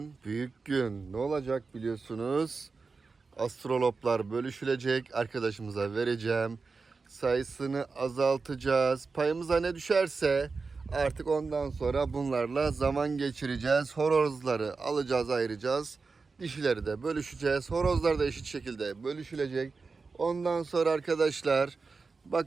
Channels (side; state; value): left; quieter; 4.4 dB